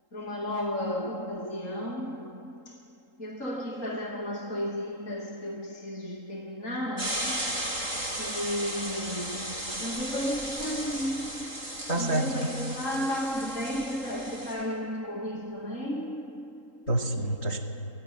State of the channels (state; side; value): late; right; 3.8 ms